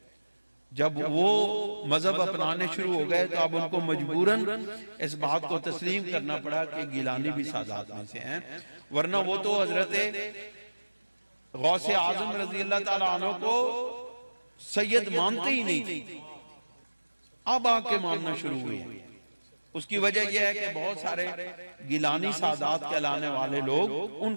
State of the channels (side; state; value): both; inverted; correlation -1.00